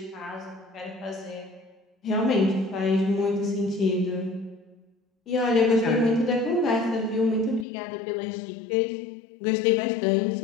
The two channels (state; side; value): drops out; right; at 7.7 s